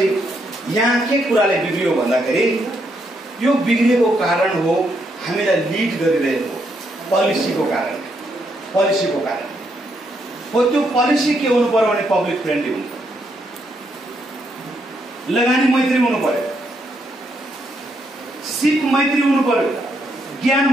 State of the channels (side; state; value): both; normal; correlation 0.77